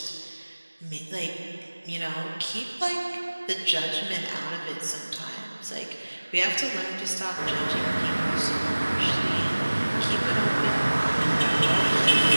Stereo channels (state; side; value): inverted; both; correlation -1.00